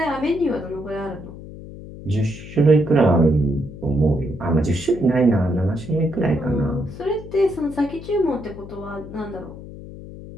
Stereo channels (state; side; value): noise; left; hum, 14 dB below the sound